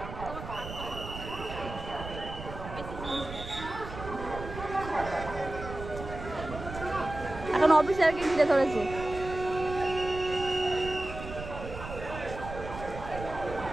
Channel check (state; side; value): noise; right; rumble, 10 dB below the sound